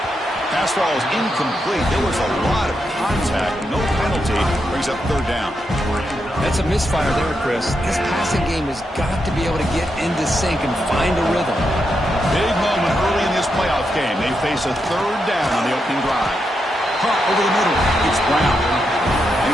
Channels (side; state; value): both; normal; correlation 0.84